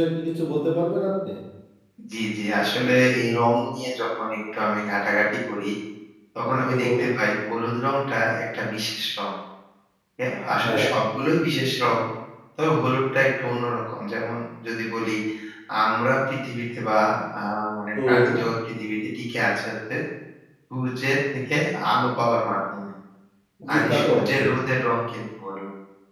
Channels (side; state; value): both; identical; correlation 1.00